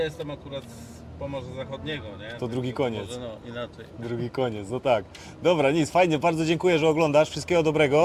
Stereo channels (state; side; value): identical; both; correlation 1.00